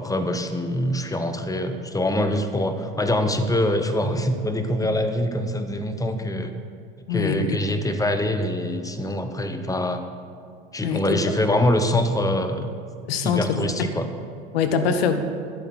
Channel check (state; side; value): normal; both; correlation 0.56